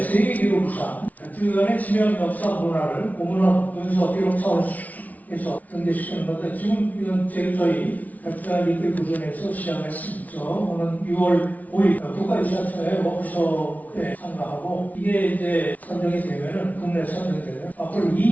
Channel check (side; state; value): right; late; 0.073 ms